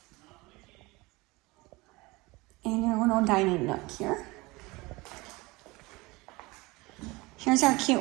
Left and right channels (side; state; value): left; quieter; 23.1 dB